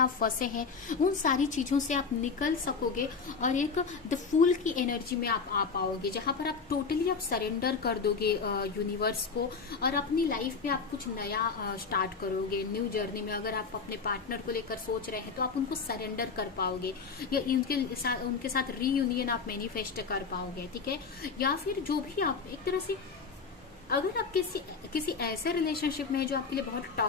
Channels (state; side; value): quieter; right; 5.1 dB